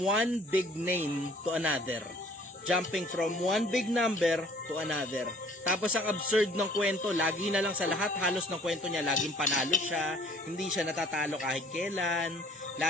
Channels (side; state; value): both; normal; correlation 0.55